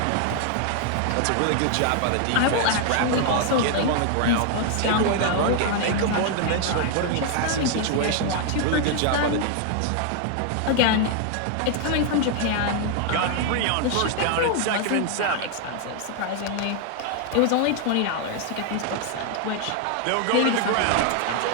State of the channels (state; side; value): different; both; correlation 0.00